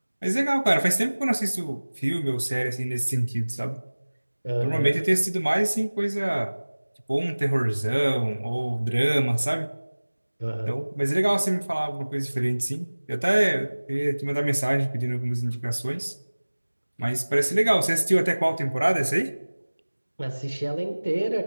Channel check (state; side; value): inverted; both; correlation -1.00